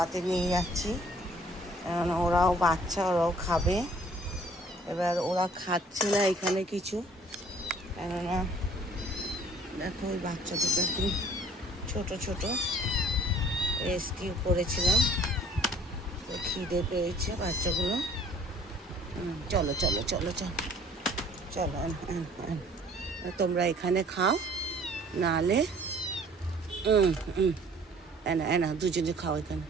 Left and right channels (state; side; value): normal; both; correlation 0.55